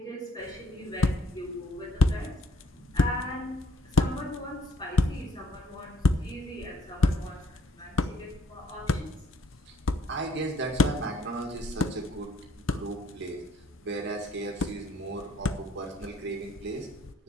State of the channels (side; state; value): both; normal; correlation 0.64